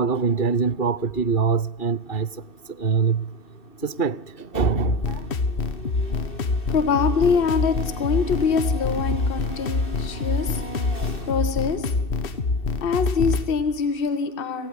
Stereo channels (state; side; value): late; right; 2.7 ms